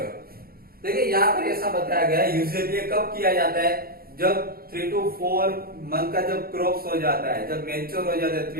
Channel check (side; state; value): left; late; 0.44 ms